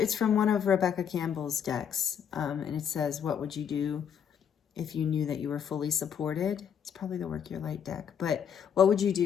from one of Rebecca Campbell's decks. And it says, what would you do if you knew that you were fully supported? It's probably the Work Your Light deck. But what would you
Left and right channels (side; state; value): right; quieter; 8.0 dB